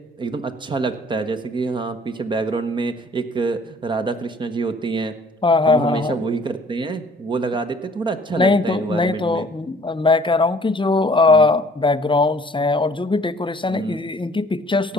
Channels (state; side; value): normal; both; correlation 0.56